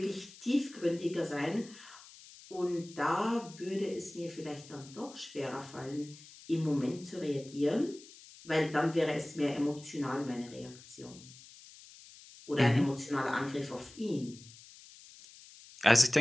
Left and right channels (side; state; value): left; noise; hiss, 20 dB below the sound